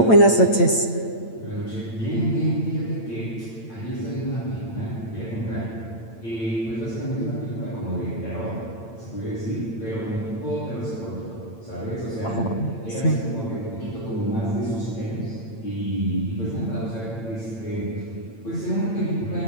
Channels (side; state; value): right; late; 8.9 ms